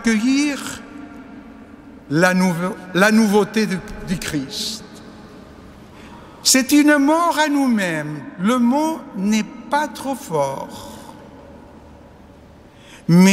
la nouveauté du Christ. C'est une mort à nous-mêmes. Le mot n'est pas trop fort.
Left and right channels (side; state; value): both; identical; correlation 1.00